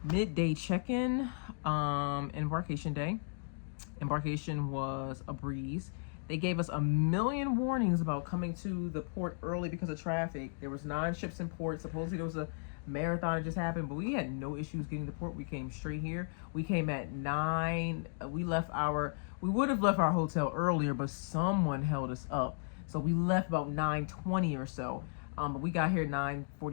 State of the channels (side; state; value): right; silent; digital silence